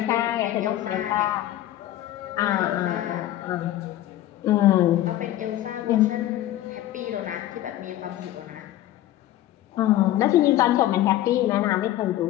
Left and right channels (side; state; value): right; quieter; 13.8 dB